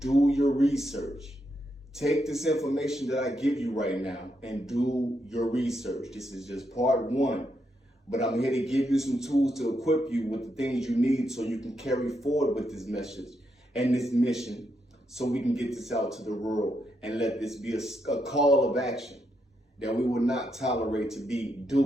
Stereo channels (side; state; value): both; normal; correlation 0.81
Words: your research. Take this information that I give you right now and do your research. This is just part one, but I'm here to give you some tools to equip you with the things you need so you can carry forward with this message and this mission so we can get this out to the world and let this be a call of action that we will not tolerate to be